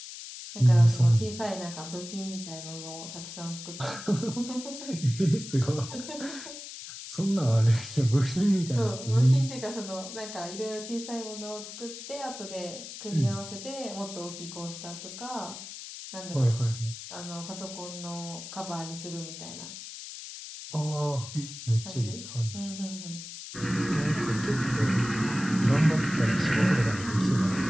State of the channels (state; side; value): noise; left; hiss, 11 dB below the sound